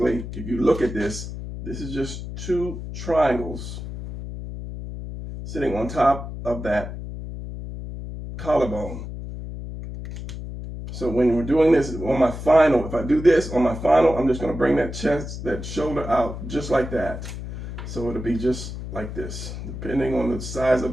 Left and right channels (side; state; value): left; noise; hum, 8 dB below the sound